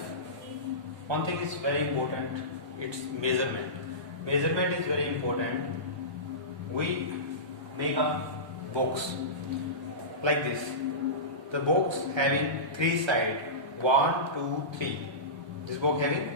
one thing is very important, it's measurement. Measurement is very important. We make a box like this. The box having 3 sides, 1, 2, 3. This box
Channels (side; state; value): left; late; 1.2 ms